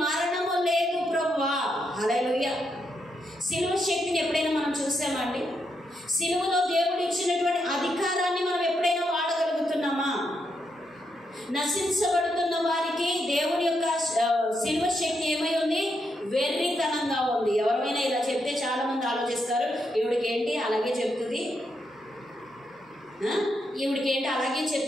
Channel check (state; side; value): normal; both; correlation 0.81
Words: మరణము లేదు ప్రభువా. హల్లెలూయా. సిలువ శక్తిని ఎప్పుడైనా మనం చూసామండి? సిలువలో దేవుడు ఇచ్చినటువంటి అధికారాన్ని మనం ఎప్పుడైనా వాడగలుగుతున్నామా? నశించబడుతున్న వారికి దేవుని యొక్క సిలువ శక్తి ఏమై ఉంది? వెర్రితనంగా ఉంది. ఎవరైనా ఇలా చెప్తే చాలా మంది ఆలోచిస్తారు, ఈవిడికి ఏంటి అలాగే చెప్తుంది, ఈవిడికి ఏంటి అలాగే